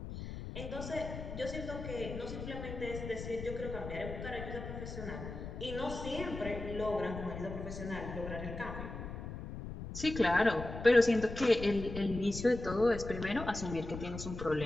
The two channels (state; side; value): noise; left; rumble, 8 dB below the sound